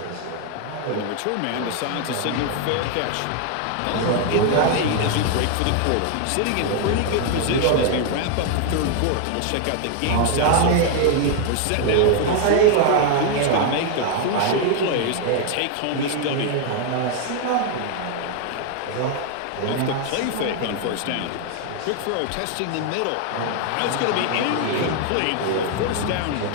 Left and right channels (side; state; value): both; different; correlation 0.00